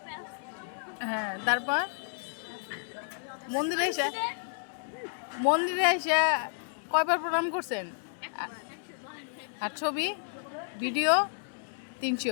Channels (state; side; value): silent; right; 57 dB below the other